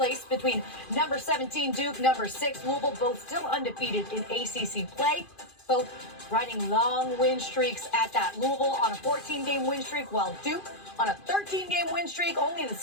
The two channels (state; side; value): late; right; 2.5 ms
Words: between number 17 Duke, number 6 Louisville, both still undefeated in ACC play, both riding long win streaks at that. Louisville on a 14-game win streak, while Duke on a 13-game win streak, only the